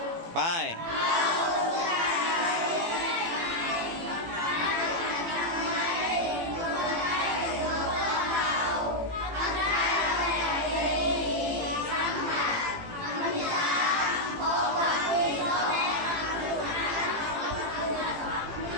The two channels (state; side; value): late; left; 18 ms